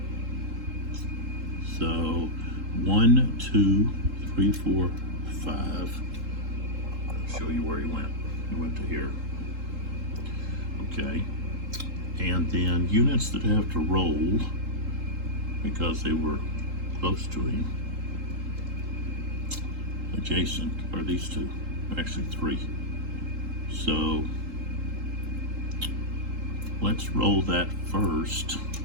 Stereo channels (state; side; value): late; left; 3.7 ms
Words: So 1, 2, 3, 4, 5. I'll show you where he went. He went to here. Okay. And then units that have to roll because they were close to him, adjacent, are these 2, actually 3. So let's roll that first.